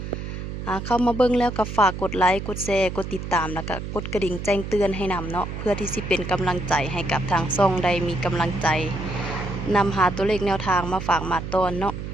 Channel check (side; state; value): right; noise; hum, 7 dB below the sound